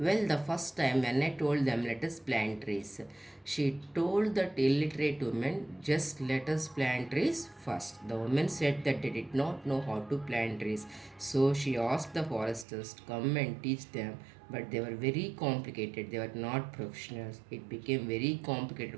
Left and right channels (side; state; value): left; drops out; at 12.7 s